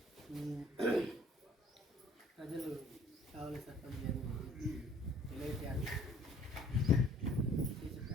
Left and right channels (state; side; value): normal; both; correlation 0.55